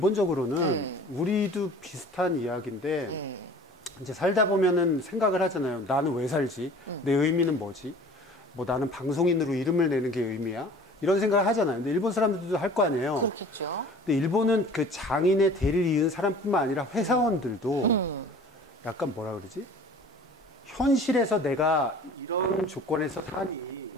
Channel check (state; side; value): normal; both; correlation 0.45